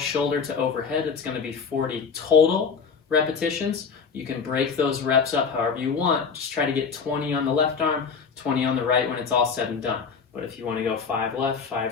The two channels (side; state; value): right; quieter; 5.7 dB